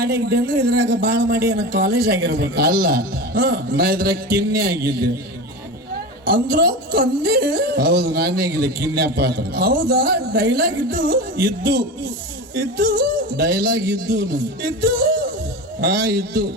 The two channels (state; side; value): normal; both; correlation 0.26